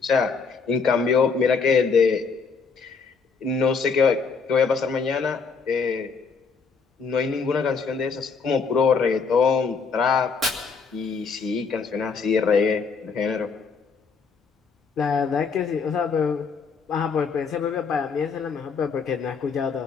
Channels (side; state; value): right; quieter; 5.3 dB